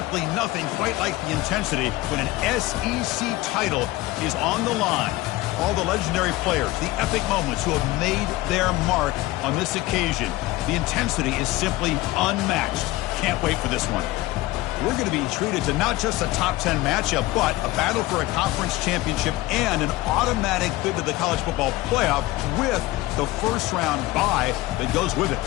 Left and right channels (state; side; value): quieter; right; 17.9 dB